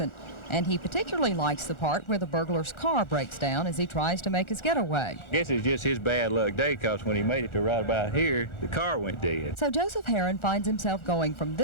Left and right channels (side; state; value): right; late; 1.4 ms